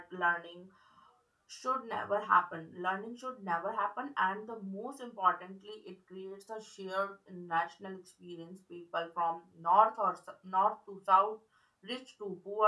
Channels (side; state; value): both; identical; correlation 1.00